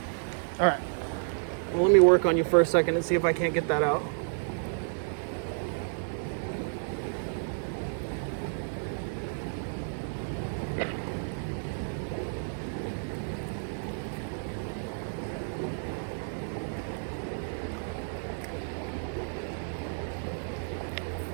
All right. Well, let me work on you for a second and see if I can't get that out.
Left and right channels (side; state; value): left; silent; digital silence